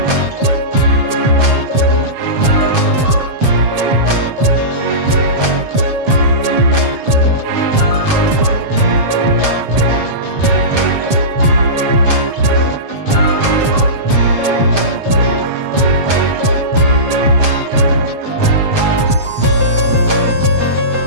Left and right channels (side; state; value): left; late; 7.5 ms